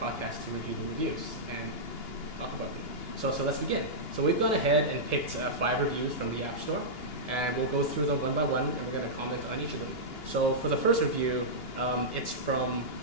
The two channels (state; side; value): late; right; 2.8 ms